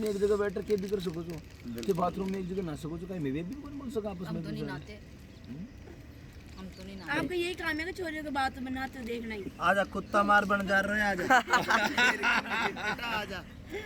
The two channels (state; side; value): identical; both; correlation 1.00